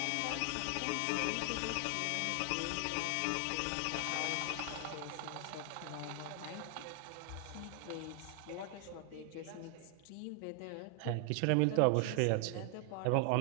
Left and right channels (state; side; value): different; both; correlation 0.00